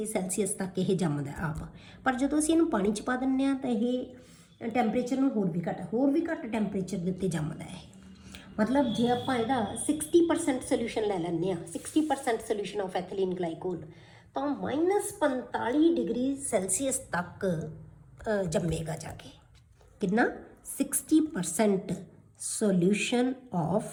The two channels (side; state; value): both; identical; correlation 1.00